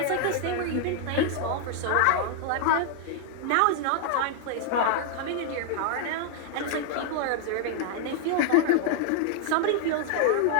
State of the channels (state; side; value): different; both; correlation 0.00